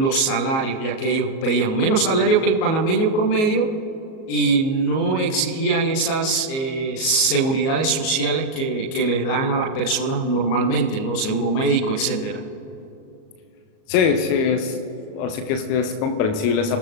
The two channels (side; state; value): right; late; 38 ms